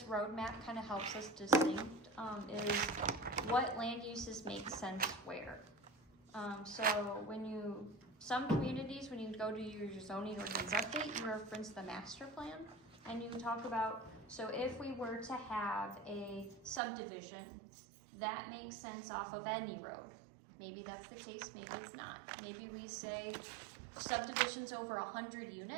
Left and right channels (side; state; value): left; drops out; at 16.8 s